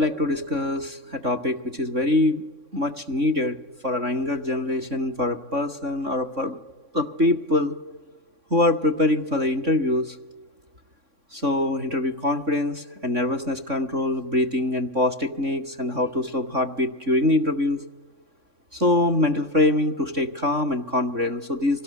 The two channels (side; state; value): left; late; 3.6 ms